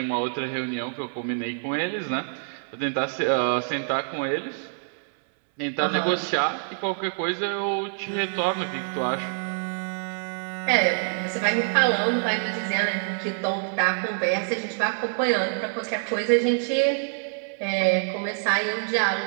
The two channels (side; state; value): left; silent; 61 dB below the other